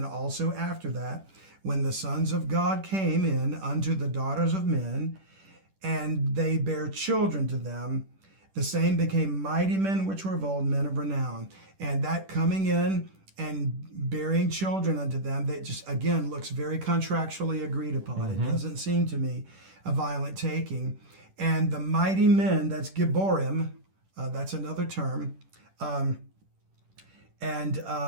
also after that, when the sons of God came in unto the daughters of men, and they bare children to them, the same became mighty men which were of old, men of renown. And that coming in and bearing children unto them, that just, again, looks very contractually agreed upon. It doesn't seem to me a violent taking. And the mighty men, that's Gibborim, that's another term.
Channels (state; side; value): late; left; 10 ms